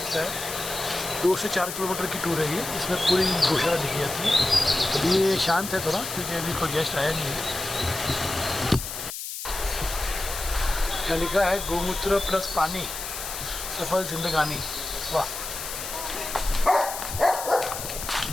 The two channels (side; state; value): left; noise; hiss, 7 dB below the sound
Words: है। 2 से 4 किलोमीटर की टूर है ये, इसमें पूरी गौशाला दिखी जाती है। अभी ये शांत है थोड़ा, क्योंकि अभी कोई गेस्ट आया नहीं है। यहाँ लिखा है गोमूत्र प्लस पानी सफल जिंदगानी। वाह,